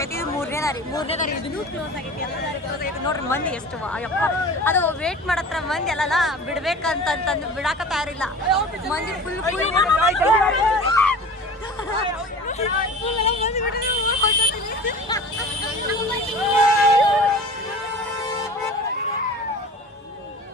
ಇದು 3ನೇ ದಾರಿ. ಇದನ್ನು ಕ್ಲೋಸ್ ಆಗೈತಿ, ಎಲ್ಲ ದಾರಿ ಕ್ಲೋಸ್ ಆಗೈತಿ. ನೋಡ್ರಿ ಮಂದಿ ಎಷ್ಟು ಅಯ್ಯಪ್ಪ, ಅದು ವೇಟ್ ಮಾಡತ್ರ ಮಂದಿ ಅಲ್ಲಲ್ಲ, ಬಿಡ್ಬೇಕಂತಂದು ಬಿಡಾಕ ತಯಾರಿಲ್ಲ ಮಂದಿ. ಫುಲ್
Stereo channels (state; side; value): normal; both; correlation 0.39